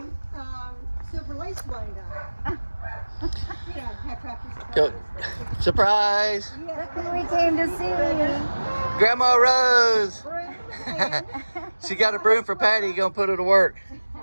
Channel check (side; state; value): both; inverted; correlation -1.00